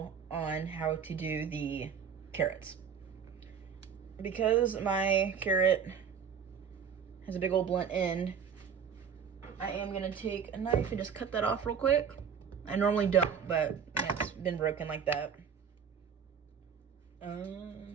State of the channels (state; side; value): quieter; left; 7.0 dB